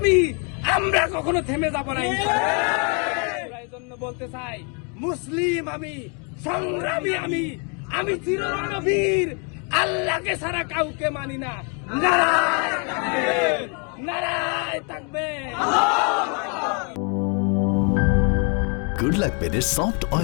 আমরা কখনো থেমে যাব না। এই জন্য বলতে চাই, মুসলিম আমি, সংগ্রামী আমি, আমি চিররণবীর, আল্লাহকে ছাড়া কাউকে মানি না। নারায় তাকবীর, নারায় তাকবীর। গুড লাক পেনের সফট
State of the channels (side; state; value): right; quieter; 36.5 dB